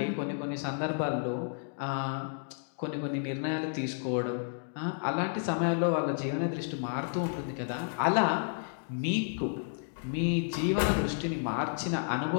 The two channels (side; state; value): right; silent; digital silence